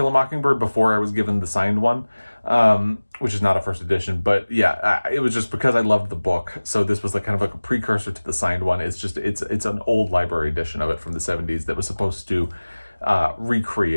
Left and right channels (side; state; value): both; inverted; correlation -1.00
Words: a Mockingbird before I was given the signed one, which is not a first edition, but yeah, it was just because I loved the book. So this was kind of like a precursor to the signed one. It's an old library edition of it from the 70s that was supposed to